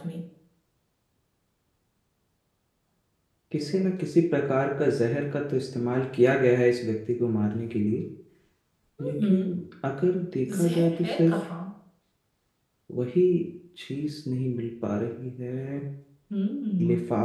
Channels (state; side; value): identical; both; correlation 1.00